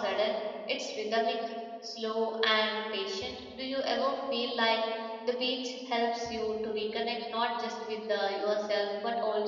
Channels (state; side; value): identical; both; correlation 1.00